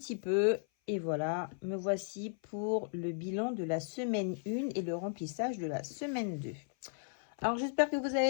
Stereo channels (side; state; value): right; silent; 54 dB below the other